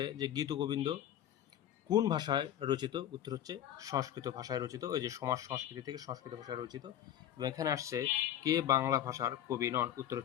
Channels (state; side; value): quieter; right; 11.2 dB